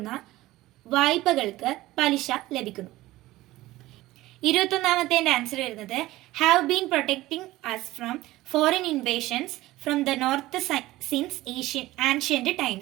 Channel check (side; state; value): left; quieter; 17.4 dB